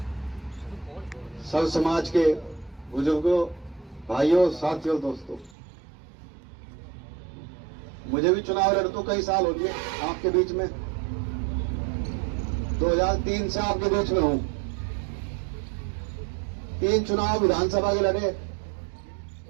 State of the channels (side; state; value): left; drops out; at 5.6 s